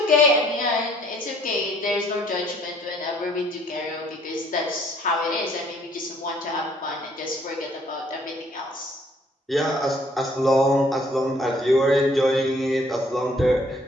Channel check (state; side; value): normal; both; correlation 0.61